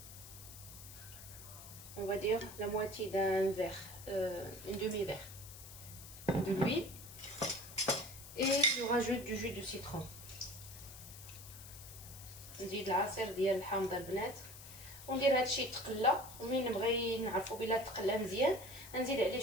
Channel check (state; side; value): noise; left; hiss, 15 dB below the sound